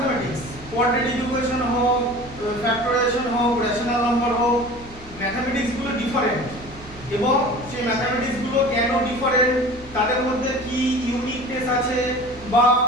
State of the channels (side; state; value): both; normal; correlation 0.40